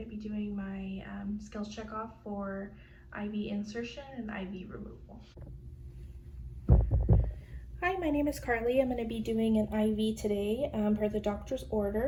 to be doing my skills check off for IV insertion and IV removal. Hi, my name is Carly. I'm going to be doing an IV today per the doctor's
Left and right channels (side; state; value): both; identical; correlation 1.00